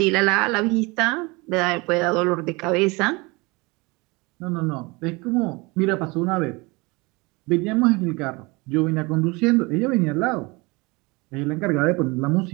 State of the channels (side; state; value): left; quieter; 25.6 dB